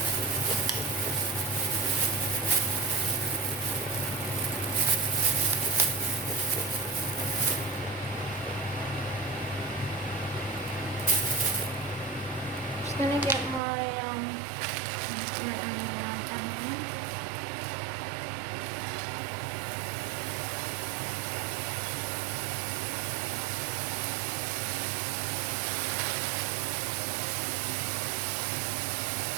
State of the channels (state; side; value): drops out; left; at 13.6 s